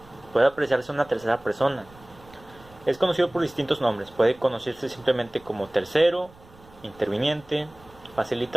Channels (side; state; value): right; noise; rumble, 24 dB below the sound